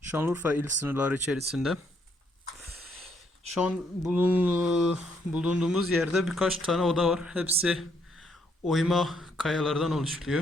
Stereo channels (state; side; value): normal; both; correlation 0.72